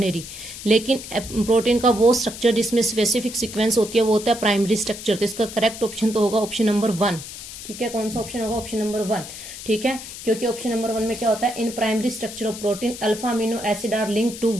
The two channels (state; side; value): noise; left; hiss, 12 dB below the sound